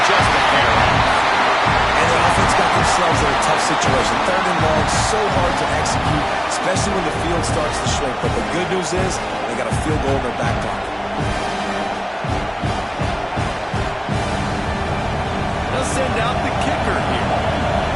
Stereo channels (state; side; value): identical; both; correlation 1.00